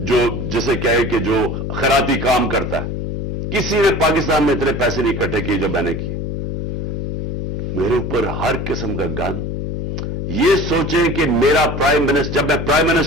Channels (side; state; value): left; noise; hum, 4 dB below the sound